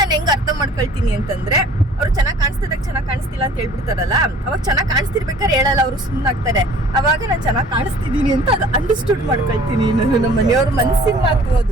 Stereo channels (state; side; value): normal; both; correlation 0.50